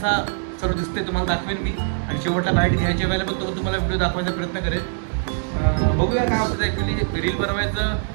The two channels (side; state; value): left; silent; digital silence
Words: सर्व दिसते तुम्हाला दाखवेन मी. आणि शेवटला बाईट घ्यायच्या वेळेला पण तो तुम्हाला व्हिडिओ दाखवायचा प्रयत्न करेल. बघूया काय होतं. ॲक्च्युली रील बनवायचं